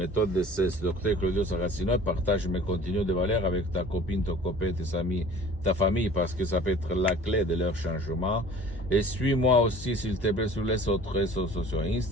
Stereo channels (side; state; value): both; normal; correlation 0.45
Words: DCS, Dr. Claudio Saracino, et partage mes contenus de valeur avec ta copine, ton copain, tes amis, ta famille, parce que ça peut être la clé de leur changement. Et suis-moi aussi, s'il te plaît, sur les autres réseaux sociaux,